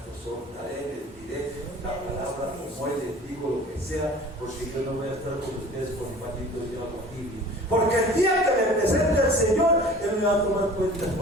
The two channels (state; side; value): normal; both; correlation 0.45